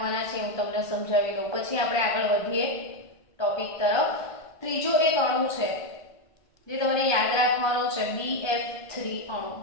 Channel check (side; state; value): right; late; 1.5 ms